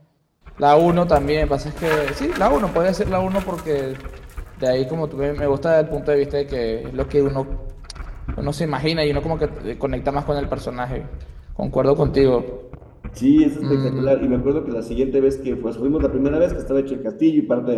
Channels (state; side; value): identical; both; correlation 1.00